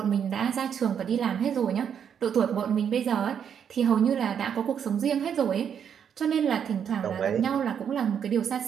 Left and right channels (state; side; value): quieter; left; 8.1 dB